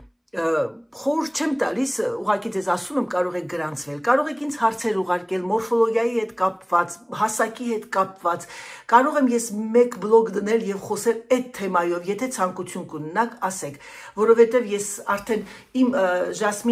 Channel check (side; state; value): both; identical; correlation 1.00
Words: խորհուրդ չեմ տալիս, ուղղակի ձեզ ասում եմ, կարող եք գրանցվել, կարող եք ինձ հարցեր ուղարկել մորֆոլոգիայի հետ կապված, հասակի հետ կապված, կարող եմ ես մեկ բլոգ դնել եւ խոսել այդ թեմայով, եթե ցանկություն կունենաք, ասեք, որովհետեւ ես արդեն իմ